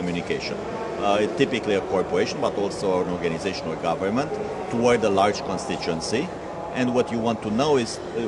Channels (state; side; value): identical; both; correlation 1.00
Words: Typically a corporation, but also an organization or government, toward a large constituency. And what you want to know is,